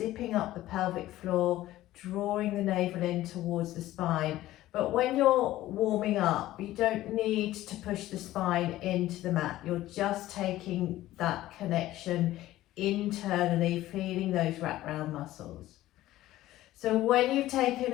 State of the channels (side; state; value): right; quieter; 15.3 dB